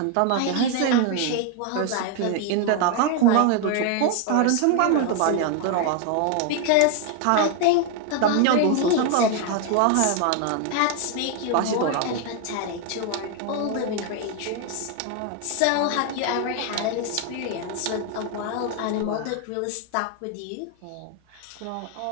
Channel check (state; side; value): different; both; correlation 0.01